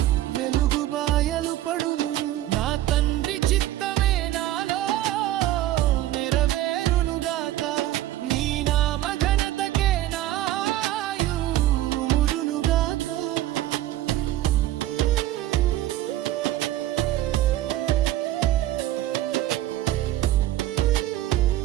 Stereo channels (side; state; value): left; quieter; 14.0 dB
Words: వెలుగు బాయలు పడును. నా తండ్రి చిత్తమే నాలో నెరవేరునుగాక, నీ నామ ఘనతకే నాయు ఉండునుగాక.